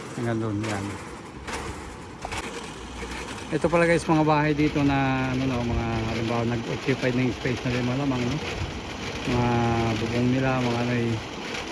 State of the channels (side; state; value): both; identical; correlation 1.00